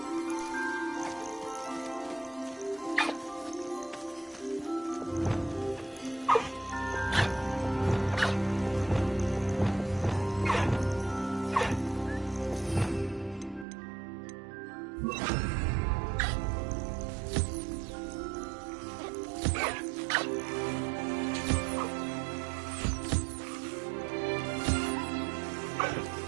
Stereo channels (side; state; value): left; drops out; at 13.7 s